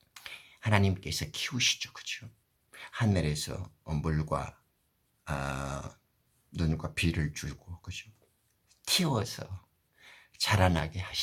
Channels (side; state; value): both; identical; correlation 1.00